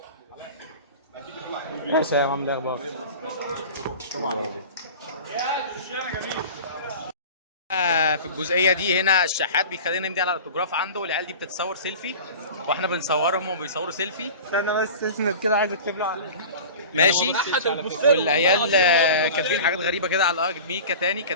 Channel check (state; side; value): inverted; both; correlation -0.36